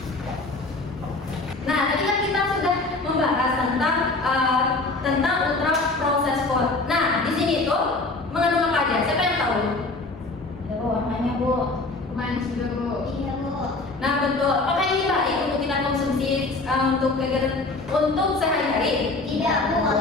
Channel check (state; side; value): quieter; right; 3.3 dB